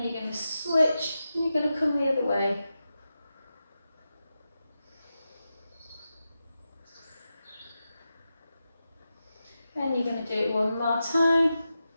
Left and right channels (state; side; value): inverted; both; correlation -0.90